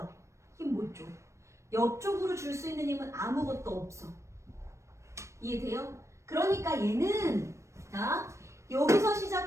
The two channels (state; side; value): late; left; 0.14 ms